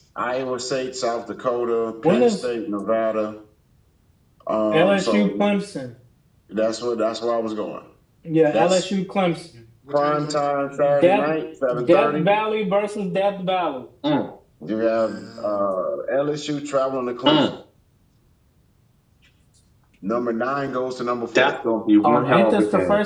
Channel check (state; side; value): identical; both; correlation 1.00